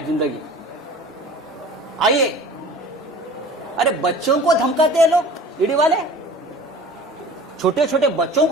जिंदगी। आइए, अरे बच्चों को धमकाते हैं लोग, ईडी वाले छोटे छोटे बच्चों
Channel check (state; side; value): normal; both; correlation 0.43